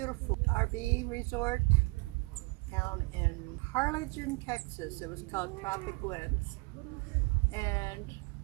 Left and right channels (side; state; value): left; quieter; 27.3 dB